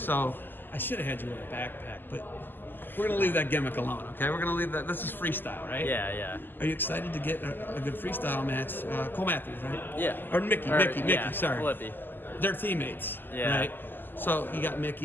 I should have had you wear a backpack, but we're going to leave that gimmick alone, okay? We're going to leave that. This is freestyle, right? Yeah. Are you excited to get a good freestyle match? Cole Matthews, right? Yeah. Or Mickey, sorry. Flippy. They're teammates, Yeah. right? So you got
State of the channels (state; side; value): late; right; 0.093 ms